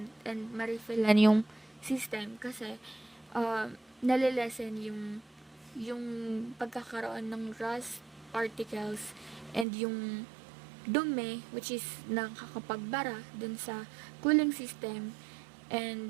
and ma-refillan yung system kasi nalilesen yung pagkakaroon ng rust particles and yung dumi, which is nakakapagbara dun sa cooling system.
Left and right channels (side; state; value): left; drops out; at 9.7 s